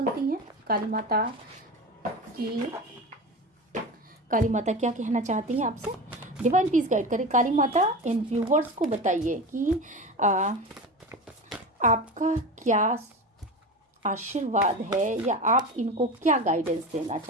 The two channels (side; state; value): both; normal; correlation 0.27